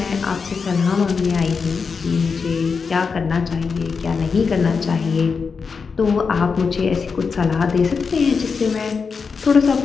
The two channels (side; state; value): right; quieter; 5.3 dB